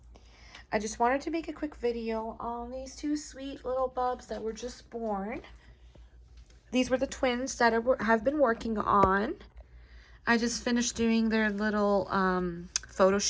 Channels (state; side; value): identical; both; correlation 1.00